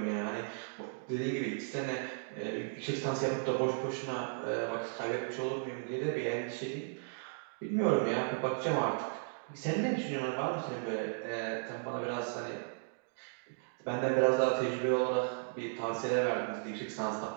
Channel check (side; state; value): left; silent; digital silence